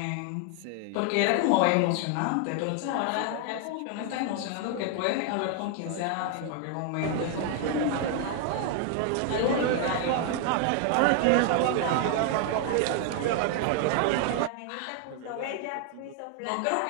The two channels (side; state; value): both; different; correlation 0.00